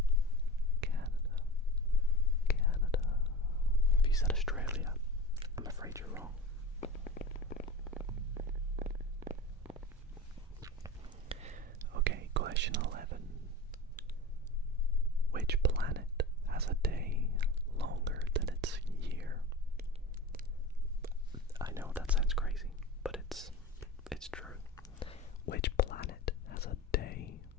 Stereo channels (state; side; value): normal; both; correlation 0.32